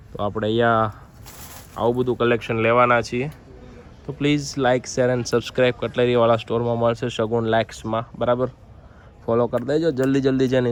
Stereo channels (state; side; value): identical; both; correlation 1.00